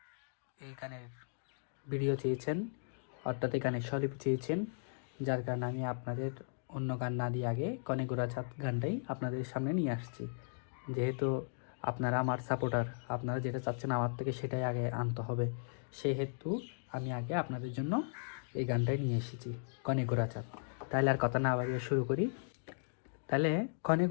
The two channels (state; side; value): silent; right; digital silence